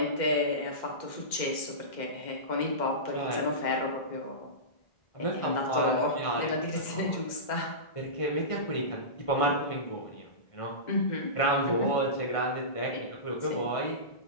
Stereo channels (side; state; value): right; late; 2.1 ms